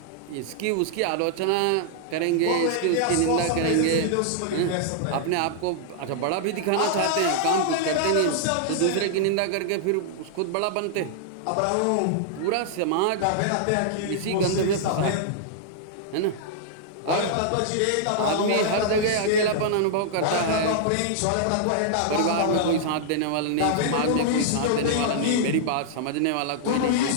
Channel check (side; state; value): both; different; correlation -0.01